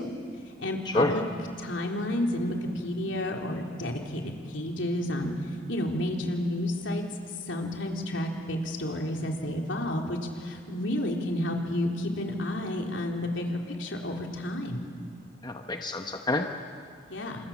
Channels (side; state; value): both; normal; correlation 0.60